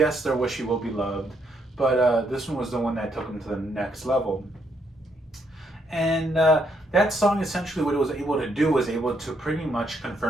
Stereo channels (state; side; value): normal; both; correlation 0.74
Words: their Wish You Will Be Loved, but this one was the one that took them to the next level. And that song, essentially, what it was able to do was able to pretty much